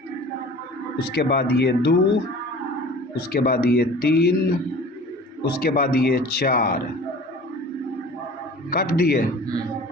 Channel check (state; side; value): normal; both; correlation 0.43